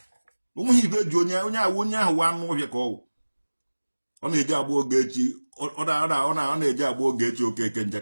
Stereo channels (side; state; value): both; inverted; correlation -1.00